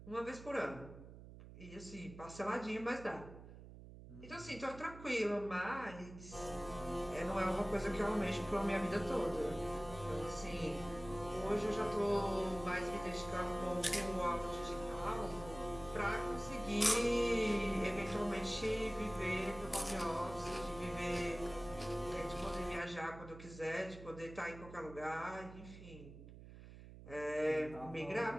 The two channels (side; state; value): right; noise; hum, 15 dB below the sound